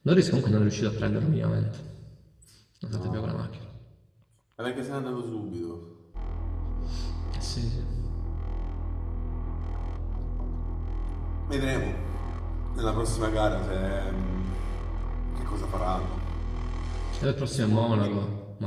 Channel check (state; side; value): identical; both; correlation 1.00